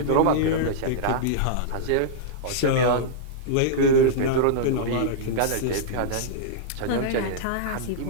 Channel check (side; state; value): both; different; correlation -0.02